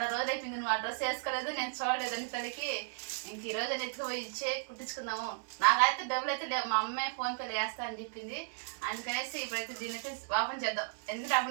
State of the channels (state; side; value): silent; left; digital silence